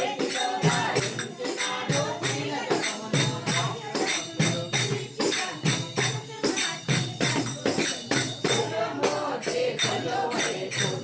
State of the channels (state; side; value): identical; both; correlation 1.00